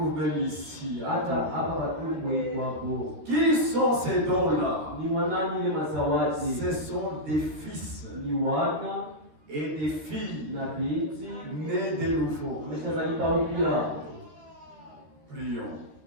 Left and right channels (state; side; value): late; left; 13 ms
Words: même ici. Qui sont ces dons-là? Ce sont des fils et des filles nés de nouveau. Prions.